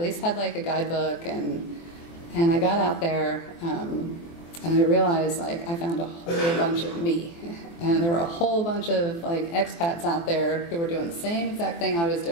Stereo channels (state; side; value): late; right; 24 ms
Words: least had like a guidebook, and I got out there, and I realized like I found a whole bunch of me. And there were a whole bunch of like expats out there who were doing the same exact thing I was